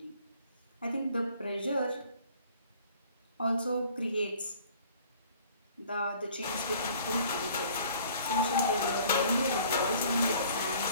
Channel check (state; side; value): inverted; both; correlation -0.53